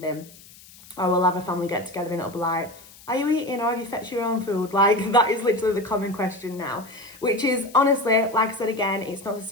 or we'll have a family get together and it'll be like, are you eating or have you fetched your own food? Like, that is literally the common question now, which is, honestly, like I said again, it's not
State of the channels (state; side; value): noise; left; hiss, 22 dB below the sound